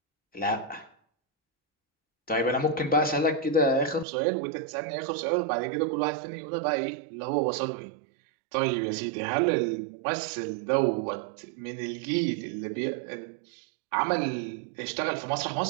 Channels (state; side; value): drops out; left; at 4.0 s